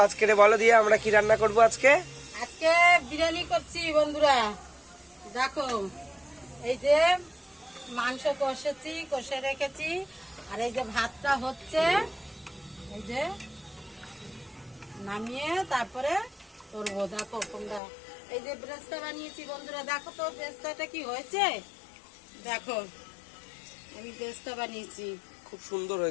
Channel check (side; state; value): right; drops out; at 17.8 s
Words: আজকে বলো দিয়ে আমরা কি রান্না করব। আজকে বিরিয়ানি করছি বন্ধুরা। দেখো এই যে মাংস কষে রেখেছি, আর এই যে ভাতটা হচ্ছে, এই যে নামিয়ে তারপরে করবো। দেখো তোমরা, এই যে ব্রেস্তা বানিয়েছি বন্ধুরা। দেখো তো ব্রেস্তাটা কি হয়েছে, দেখো আমি ব্রেস্তা বানিয়েছি, খুব সুন্দর